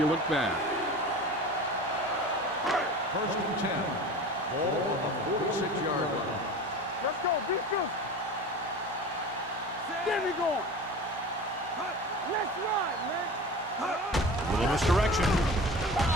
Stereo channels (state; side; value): normal; both; correlation 0.35